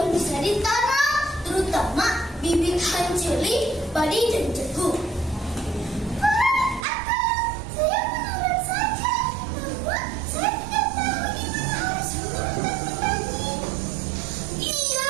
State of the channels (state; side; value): drops out; left; at 6.8 s